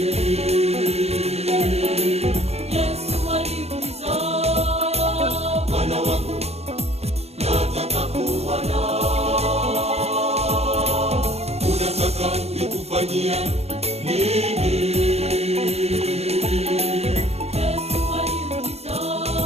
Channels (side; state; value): left; late; 0.30 ms